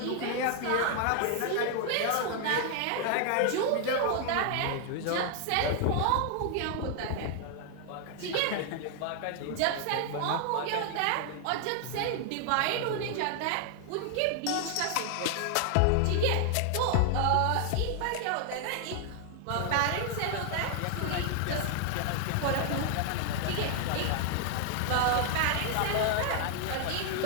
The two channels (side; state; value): both; different; correlation 0.00